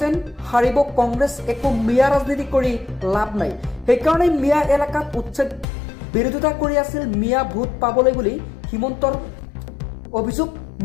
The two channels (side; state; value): right; drops out; at 5.7 s